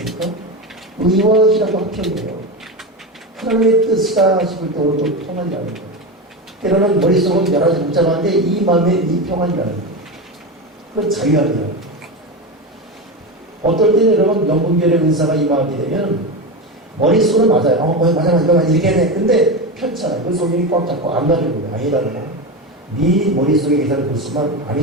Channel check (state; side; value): normal; both; correlation 0.19